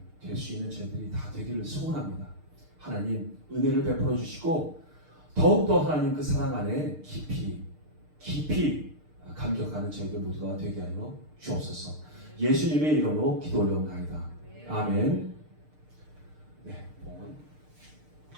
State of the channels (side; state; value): left; late; 6.6 ms